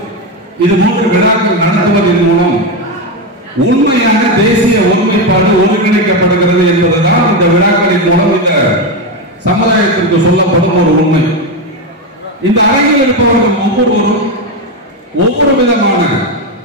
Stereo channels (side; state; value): both; normal; correlation 0.11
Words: இது போன்ற விழாக்கள் நடத்துவதன் மூலம் உண்மையான தேசிய ஒருமைப்பாடு ஒருங்கிணைக்கப்படுகிறது என்பதுதான் இந்த விழாக்களின் மூலம் இந்த சமுதாயத்திற்கு சொல்லப்படும் ஒரு உண்மை. இந்த அரங்கில் இருப்பவர்கள் ஒவ்வொருவரும் ஒவ்வொரு விதமான